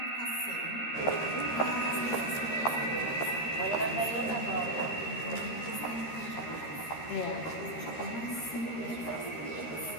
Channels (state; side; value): late; right; 13 ms